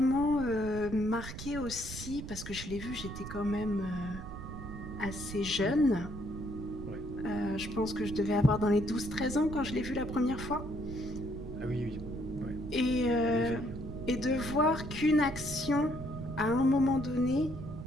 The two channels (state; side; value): noise; right; rumble, 9 dB below the sound